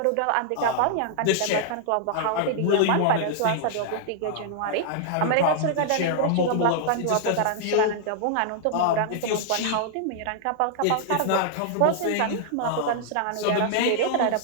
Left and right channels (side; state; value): both; different; correlation -0.01